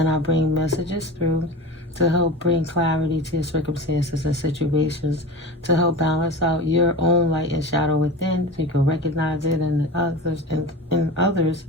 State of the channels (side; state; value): both; normal; correlation 0.30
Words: I bring messages through to help bring clarity to your circumstances and situations, to help balance out your own light and shadow within, so you can recognize it in others,